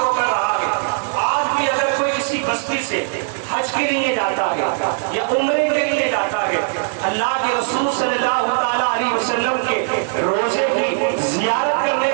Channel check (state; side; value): silent; left; digital silence